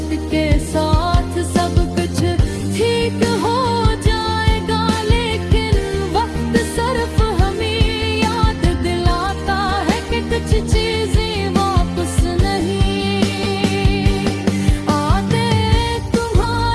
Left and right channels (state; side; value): identical; both; correlation 1.00